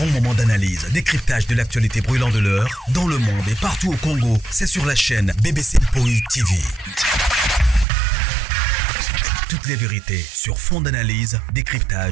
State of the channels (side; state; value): left; drops out; at 7.9 s